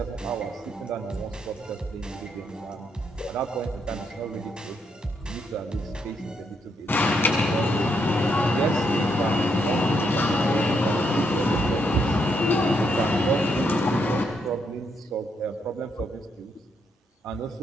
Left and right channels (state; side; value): normal; both; correlation 0.77